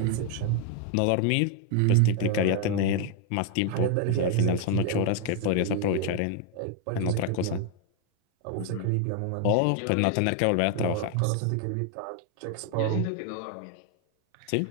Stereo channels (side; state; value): both; different; correlation 0.01